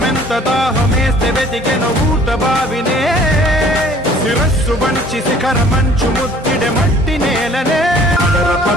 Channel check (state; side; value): normal; both; correlation 0.54